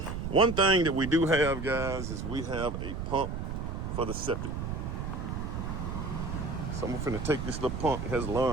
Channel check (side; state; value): right; noise; rumble, 4 dB below the sound